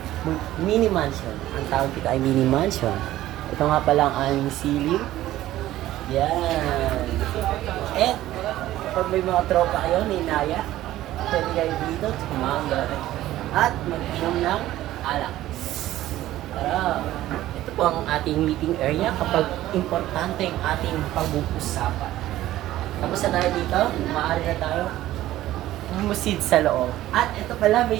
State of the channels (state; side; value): quieter; left; 14.7 dB